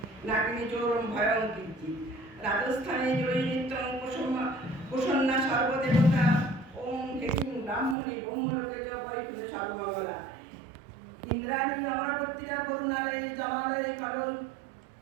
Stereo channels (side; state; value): left; drops out; at 8.0 s